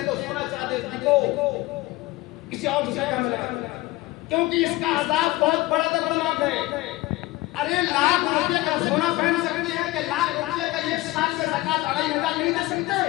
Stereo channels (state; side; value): quieter; right; 18.9 dB